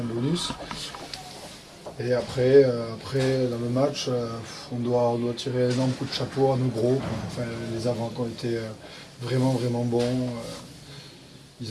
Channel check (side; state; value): both; identical; correlation 1.00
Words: de bonus. Et après dans le match, on doit tirer un énorme coup de chapeau à nos gros. Enfin, les avants qui ont été vraiment bons. Ils